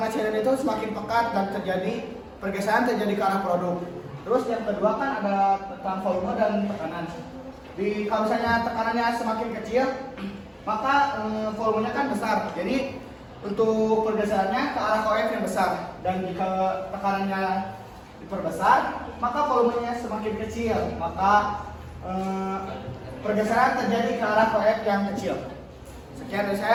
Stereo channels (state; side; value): identical; both; correlation 1.00